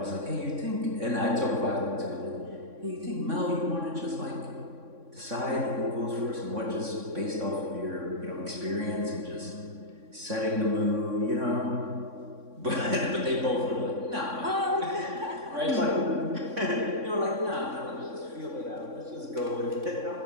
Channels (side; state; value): left; late; 3.6 ms